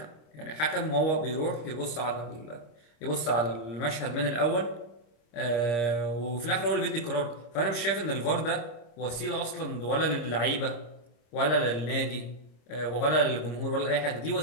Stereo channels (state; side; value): late; right; 26 ms